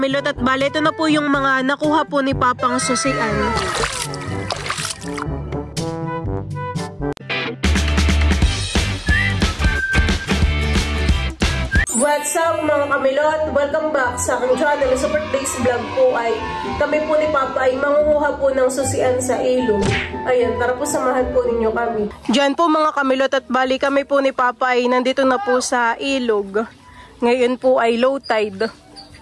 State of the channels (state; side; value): identical; both; correlation 1.00